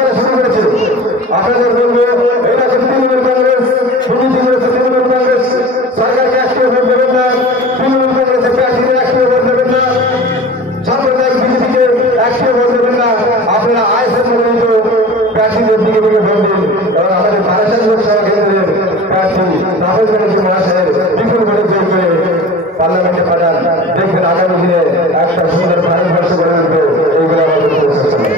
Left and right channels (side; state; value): both; normal; correlation 0.37